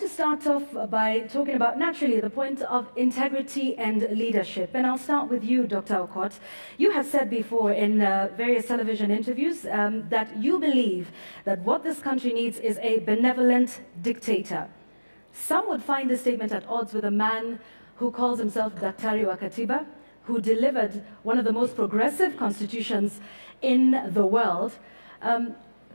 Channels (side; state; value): both; inverted; correlation -1.00